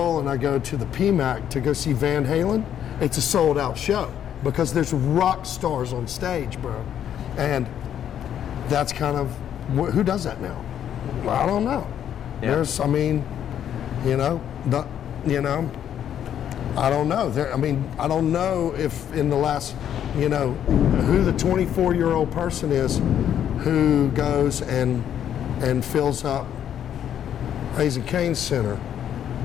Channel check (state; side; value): quieter; right; 9.8 dB